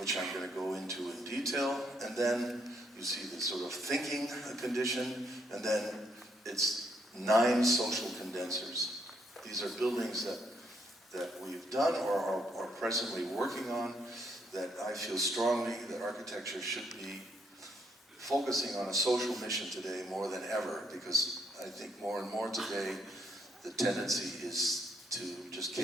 I'm going to go into in detail, and then you see the sort of thinking condition, and then it's 9 social condensers. These are buildings that we've done or are presently working on that I feel strongly that architecture should be focusing on a social mission today more than ever, because I think more and more today the tendency is to just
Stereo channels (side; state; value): both; normal; correlation 0.73